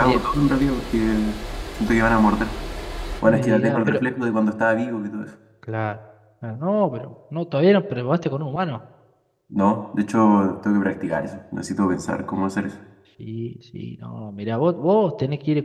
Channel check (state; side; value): identical; both; correlation 1.00